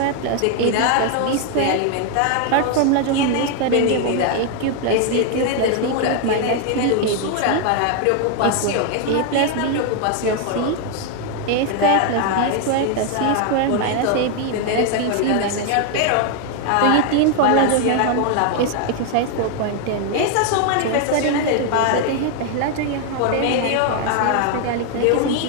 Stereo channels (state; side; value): different; both; correlation 0.00